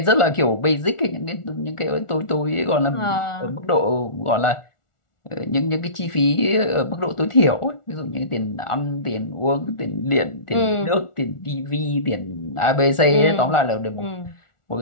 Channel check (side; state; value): right; late; 1.4 ms